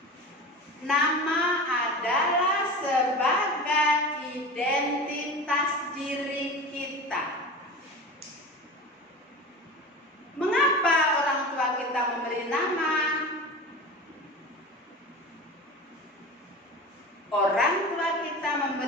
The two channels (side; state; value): both; normal; correlation 0.32